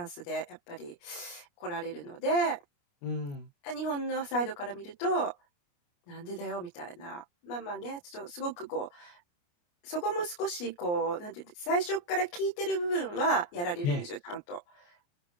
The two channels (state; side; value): late; right; 29 ms